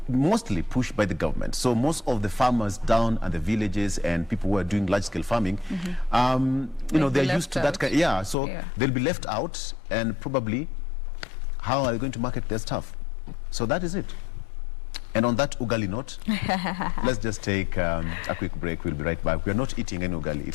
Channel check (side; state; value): right; drops out; at 8.3 s